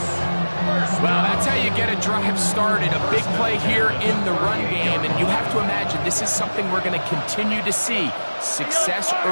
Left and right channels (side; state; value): both; inverted; correlation -1.00